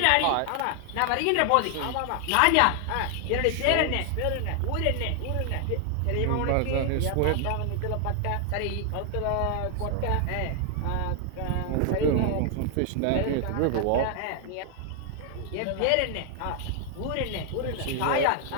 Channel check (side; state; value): both; different; correlation 0.00